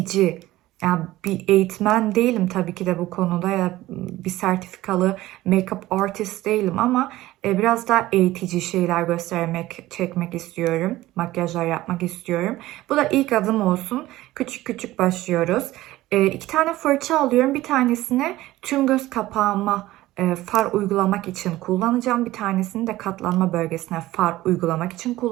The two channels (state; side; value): quieter; left; 16.7 dB